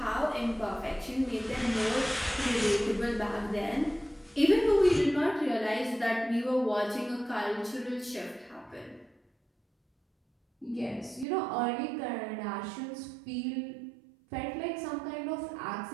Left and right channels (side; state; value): left; drops out; at 11.2 s